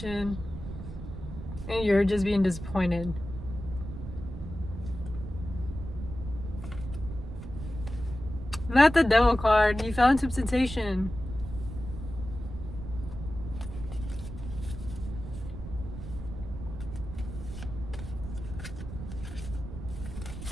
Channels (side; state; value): right; noise; rumble, 9 dB below the sound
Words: and you're just being disappointed. Not the devil card. You fell into temptation.